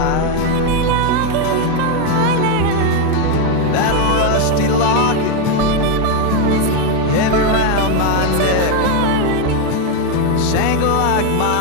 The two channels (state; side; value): different; both; correlation 0.02